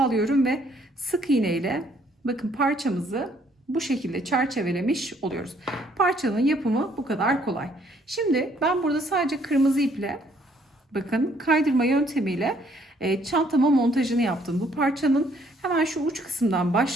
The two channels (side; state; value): both; normal; correlation 0.65